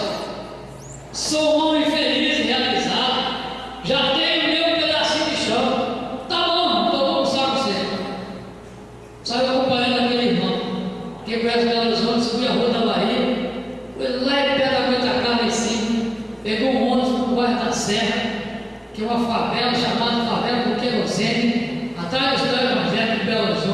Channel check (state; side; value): identical; both; correlation 1.00